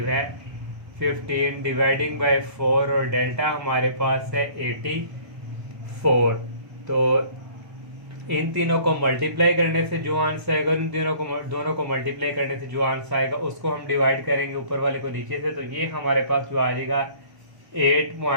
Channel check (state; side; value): late; left; 1.0 ms